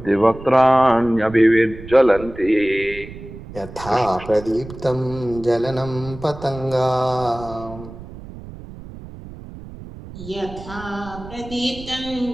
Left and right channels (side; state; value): right; noise; rumble, 14 dB below the sound